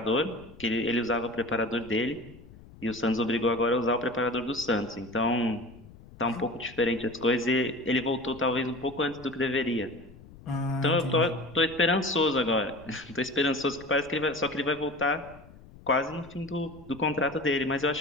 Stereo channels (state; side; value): noise; left; rumble, 21 dB below the sound